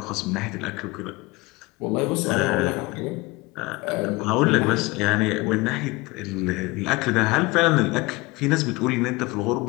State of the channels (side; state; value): right; quieter; 23.3 dB